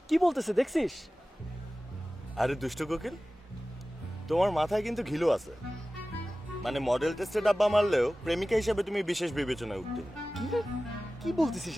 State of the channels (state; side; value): normal; both; correlation 0.96